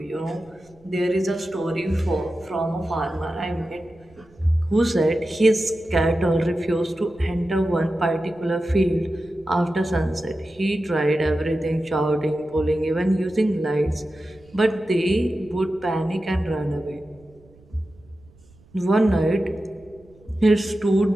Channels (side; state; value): right; noise; rumble, 28 dB below the sound